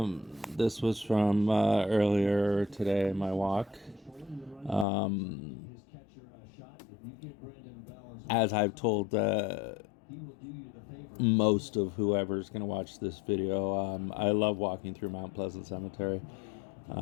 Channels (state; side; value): drops out; right; at 4.9 s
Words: This was from earlier today, my walk. Um, as I've told most of whoever's going to watch this video, I love walking through Mount Pleasant Cemetery.